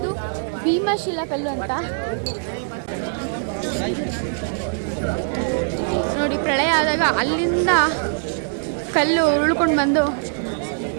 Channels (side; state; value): left; silent; digital silence